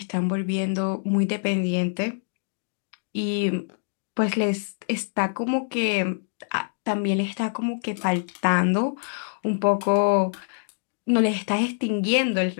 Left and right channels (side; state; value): right; silent; digital silence